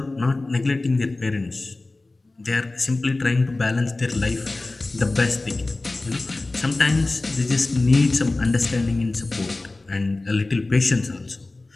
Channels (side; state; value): right; quieter; 3.1 dB